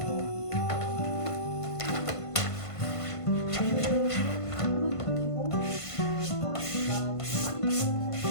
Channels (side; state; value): right; late; 1.5 ms